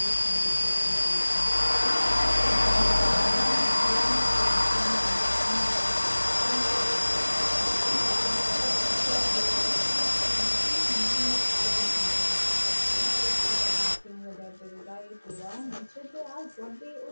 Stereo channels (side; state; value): both; inverted; correlation -1.00